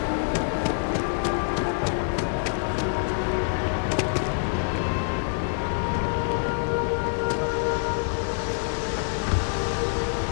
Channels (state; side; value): silent; right; digital silence